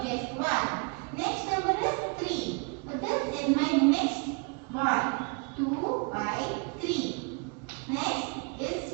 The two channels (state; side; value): quieter; left; 34.4 dB